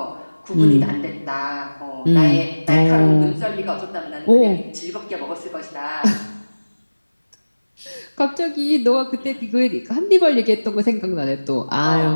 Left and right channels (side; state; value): both; inverted; correlation -1.00